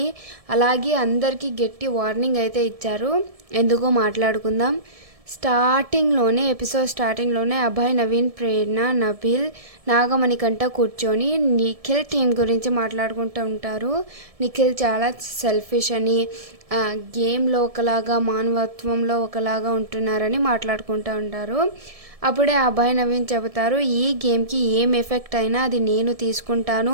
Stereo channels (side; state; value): left; late; 1.7 ms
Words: అలాగే అందరికీ గట్టి వార్నింగ్ అయితే ఇచ్చారు. ఎందుకో మాట్లాడుకుందాం. ఎపిసోడ్ స్టార్టింగ్లోనే అభయ్, నవీన్, ప్రేరణ, నబిల్, నాగమణికంట కూర్చొని నిఖిల్ టీం గురించి మాట్లాడుకుంటూ ఉంటారు. నిఖిల్ చాలా సెల్ఫిష్ అని, గేమ్లో ఒకలాగా మానవత్వంలో ఒకలాగా ఉంటున్నారని మాట్లాడుకుంటూ ఉంటారు. అప్పుడే అభయ్, నవీన్ చెబుతారు, ఈ గేమ్కి ఏం ఎఫెక్ట్ అయినా అది నేను